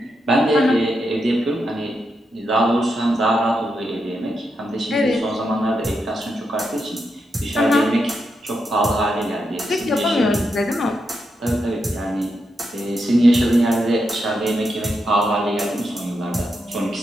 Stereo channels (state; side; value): normal; both; correlation 0.84